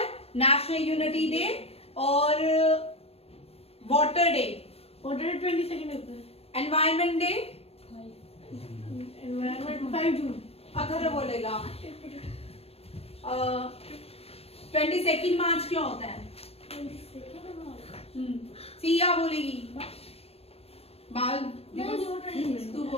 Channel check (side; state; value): right; late; 0.29 ms